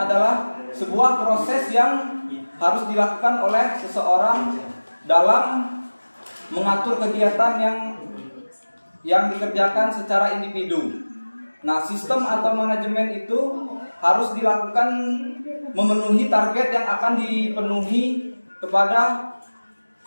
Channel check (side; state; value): both; inverted; correlation -1.00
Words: sebuah proses yang harus dilakukan oleh seseorang dalam mengatur kegiatan yang dikerjakan secara individu. Nah, sistem atau manajemen itu harus dilakukan memenuhi target yang akan dipenuhi kepada